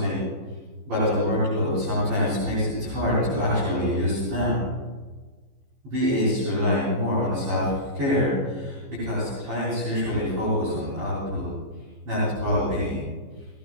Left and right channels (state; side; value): late; left; 15 ms